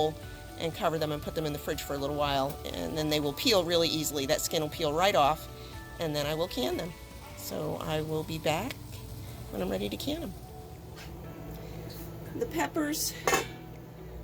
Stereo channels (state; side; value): identical; both; correlation 1.00